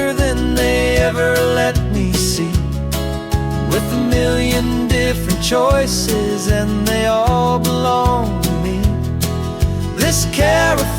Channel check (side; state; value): both; identical; correlation 1.00